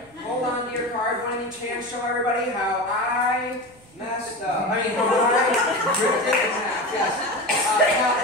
Hold on to your card. One in each hand. Show everybody how I messed up. I mean, how I ripped it in half. Yes. Now,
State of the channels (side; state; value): right; noise; hum, 28 dB below the sound